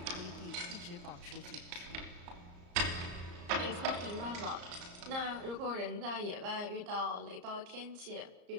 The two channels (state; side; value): late; left; 34 ms